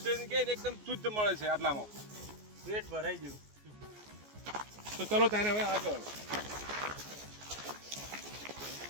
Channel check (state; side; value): late; left; 14 ms